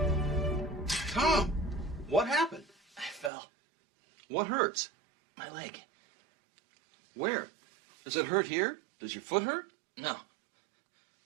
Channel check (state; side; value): drops out; left; at 3.3 s